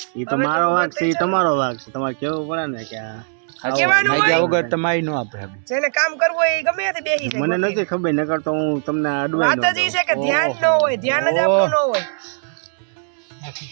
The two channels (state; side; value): silent; left; 66 dB below the other